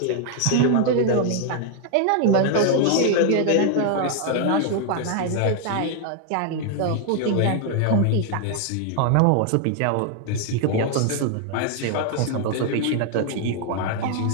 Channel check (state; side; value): different; both; correlation 0.00